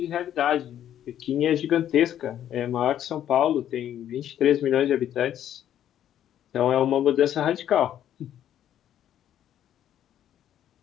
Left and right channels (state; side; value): quieter; right; 10.8 dB